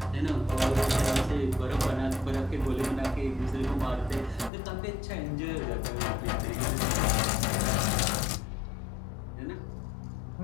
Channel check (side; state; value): right; drops out; at 4.5 s